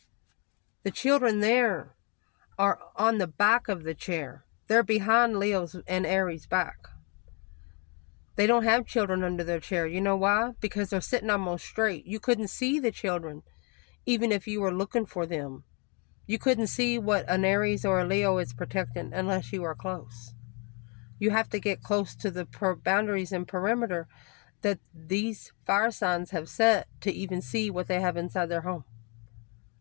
the children there are on the back of the chair. They're behind Leo's and Aries' back. They don't have children under their chair. You know why? Because they're sitting almost straight. You couldn't see the children, even if you were looking for them. You couldn't see what an Aries or a Leo is protecting unless you were close. You have to get close to the boundaries and perimeter that these fire signs have set to even see what they have inside their home.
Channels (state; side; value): quieter; right; 33.0 dB